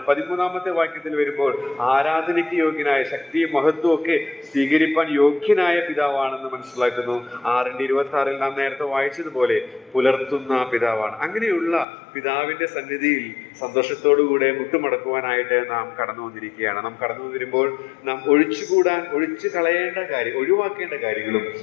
13-ാമത്തെ വാക്യത്തിൽ വരുമ്പോൾ ആരാധനയ്ക്ക് യോഗ്യനായ, ശക്തിയും മഹത്വവും ഒക്കെ സ്വീകരിപ്പാൻ യോഗ്യനായ പിതാവാണെന്ന് മനസ്സിലാക്കുന്നു. 6:26 നാം നേരത്തെ വായിച്ചതുപോലെ പുലർത്തുന്ന പിതാവാണ്. അങ്ങനെയുള്ള പിതാവിന്റെ സന്നിധിയിൽ സന്തോഷത്തോടുകൂടെ മുട്ടുമടക്കുവാനായിട്ട് നാം കടന്നു വന്നിരിക്കുകയാണ്. നാം കടന്നു വരുമ്പോൾ നാം ഒഴിച്ചു കളയേണ്ട കാര്യം, ഒഴിവാക്കേണ്ട കാര്യങ്ങളും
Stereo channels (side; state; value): right; drops out; at 11.9 s